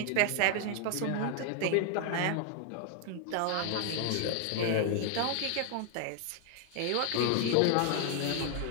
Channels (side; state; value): both; different; correlation 0.01